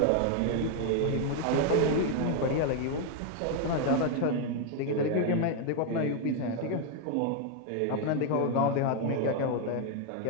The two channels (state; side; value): different; both; correlation 0.00